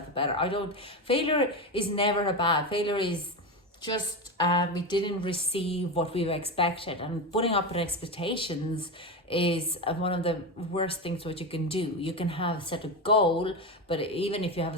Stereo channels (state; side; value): normal; both; correlation 0.17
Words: better. Failure is never a bad. Failure is just we didn't receive what we expected, and putting up with expectations is one of the worst things what you can do. You can have set a goal, but even if you have